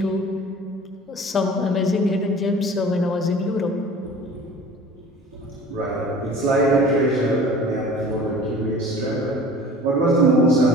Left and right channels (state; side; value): normal; both; correlation 0.43